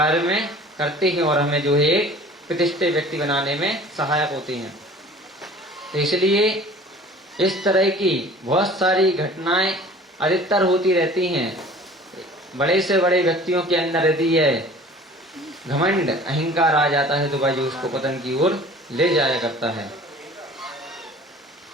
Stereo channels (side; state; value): both; normal; correlation 0.46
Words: में करते हैं और हमें जो है एक प्रतिष्ठित व्यक्ति बनाने में सहायक होते हैं। तो इसलिए इस तरह की बहुत सारी घटनाएं अधिकतर होती रहती हैं। बड़े से बड़े व्यक्तियों के अंदर यदि यह घमंड अहंकार आ जाता है तो भाई जो उसको पतन की ओर ले जाया करता है।